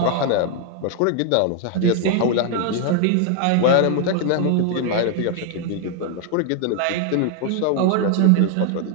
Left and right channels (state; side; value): different; both; correlation 0.00